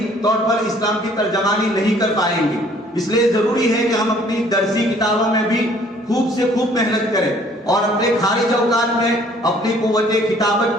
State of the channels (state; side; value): normal; both; correlation 0.58